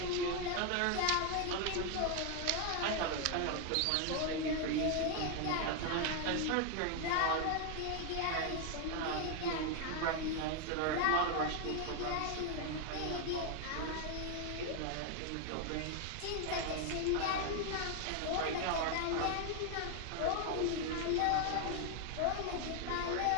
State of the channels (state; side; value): different; both; correlation 0.00